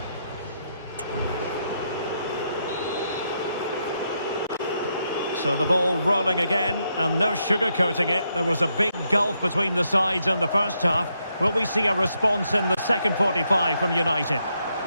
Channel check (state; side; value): inverted; both; correlation -0.79